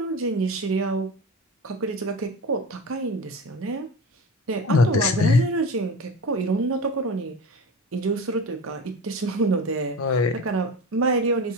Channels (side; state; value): both; normal; correlation 0.30